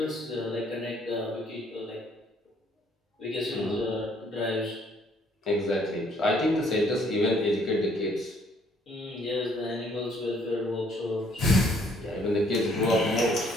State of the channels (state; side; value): normal; both; correlation 0.64